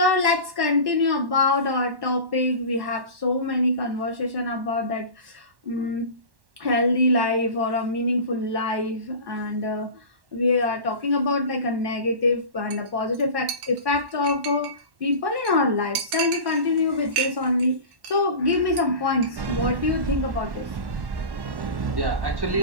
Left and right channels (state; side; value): late; left; 1.1 ms